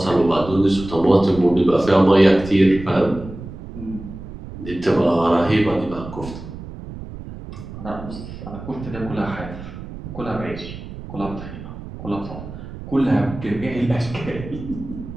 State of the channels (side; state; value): right; noise; rumble, 12 dB below the sound